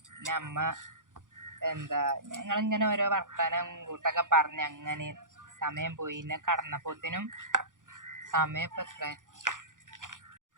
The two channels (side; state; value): left; late; 0.88 ms